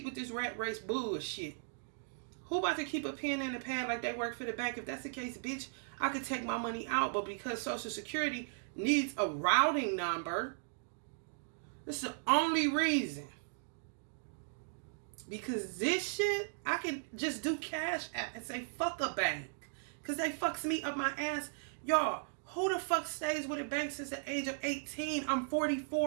with this rat race bullshit? Who about to keep a pen in the pad like they work for the bank? If that's the case, bitch, I could take my money out. But because Social Security needs a routing number, that's the only reason. Because this shit, I can just do Cash App and say, fuck a bank. Because they fucks me up my ass. Y'all, who the fuck stays with a bank since the age of 18? I'm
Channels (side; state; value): left; silent; digital silence